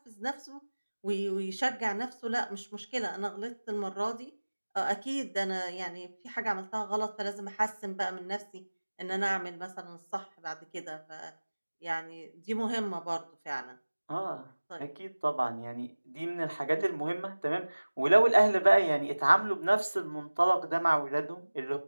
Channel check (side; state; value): both; inverted; correlation -1.00